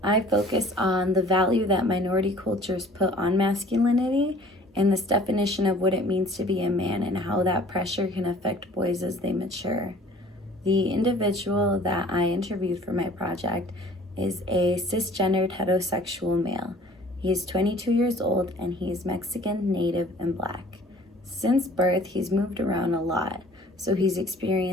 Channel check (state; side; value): normal; both; correlation 0.51